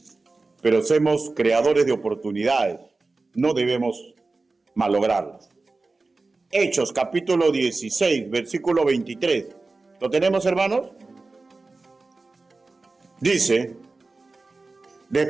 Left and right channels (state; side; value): quieter; left; 3.6 dB